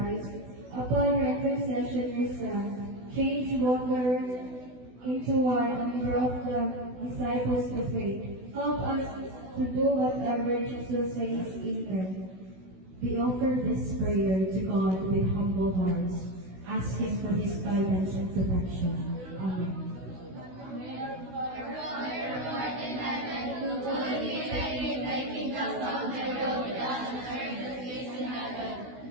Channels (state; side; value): late; left; 16 ms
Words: upon her intercession your Son, changed water into wine and brought the disciples to faith. Help us to do whatever Jesus says. Amen. We offer this prayer to God with humble hearts, asking for His guidance and protection. Amen.